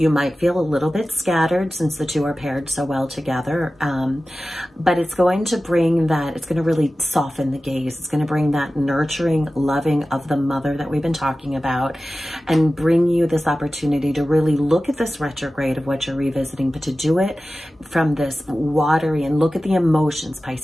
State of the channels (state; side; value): normal; both; correlation 0.95